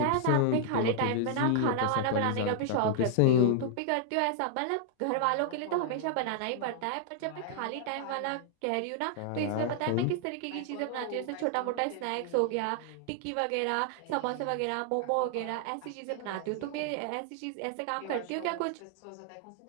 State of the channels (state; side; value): different; both; correlation -0.01